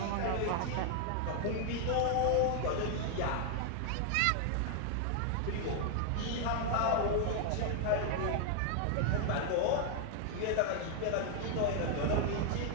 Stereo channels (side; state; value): both; different; correlation 0.00